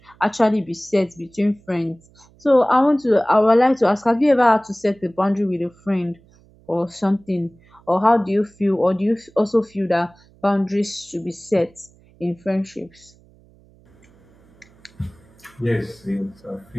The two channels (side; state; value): right; noise; hum, 29 dB below the sound